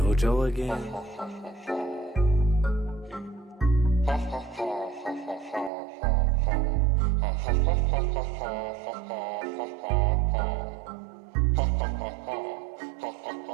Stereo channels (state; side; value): drops out; left; at 5.7 s